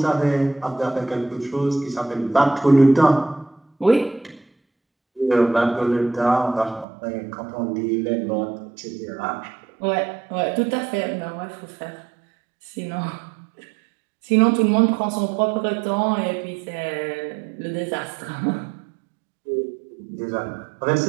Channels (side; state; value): left; drops out; at 6.9 s